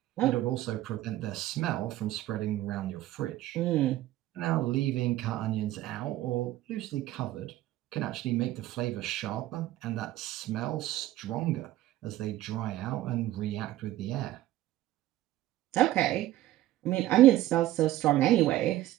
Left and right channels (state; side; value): quieter; left; 14.9 dB